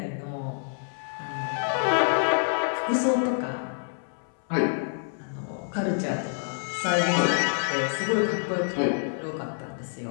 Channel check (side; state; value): right; silent; 60 dB below the other